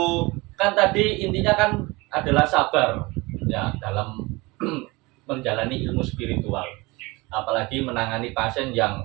Kan tadi intinya kan adalah sabar ya dalam menjalani ilmu spiritual. Apalagi menangani pasien yang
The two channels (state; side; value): quieter; left; 23.6 dB